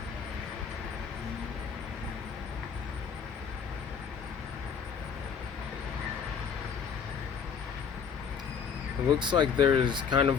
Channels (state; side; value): quieter; right; 6.6 dB